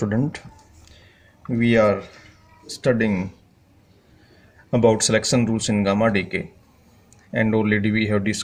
we are studying about selection rules in gamma decay, and already we have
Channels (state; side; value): identical; both; correlation 1.00